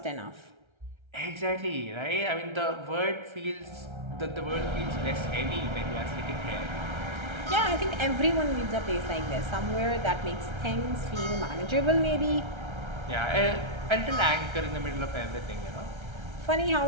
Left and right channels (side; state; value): left; late; 1.3 ms